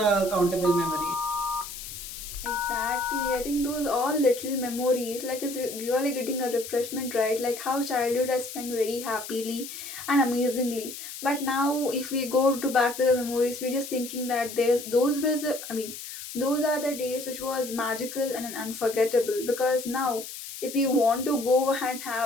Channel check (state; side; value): noise; left; hiss, 10 dB below the sound